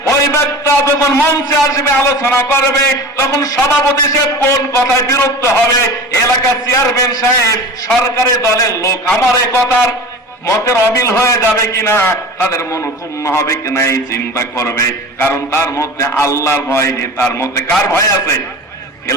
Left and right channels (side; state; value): both; normal; correlation 0.35